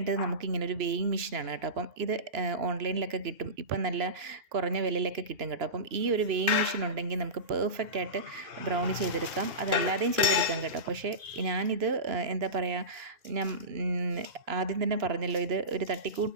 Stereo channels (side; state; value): left; late; 3.0 ms